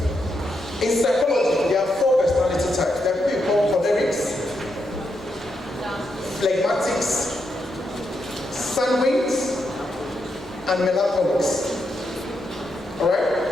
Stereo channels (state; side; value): normal; both; correlation 0.82